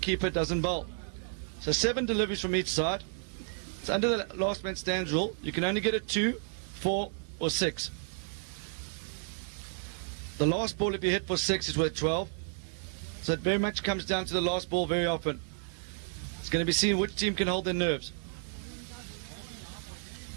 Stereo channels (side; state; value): left; silent; 56 dB below the other